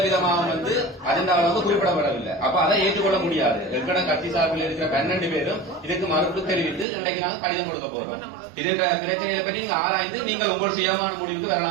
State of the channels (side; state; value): left; drops out; at 6.9 s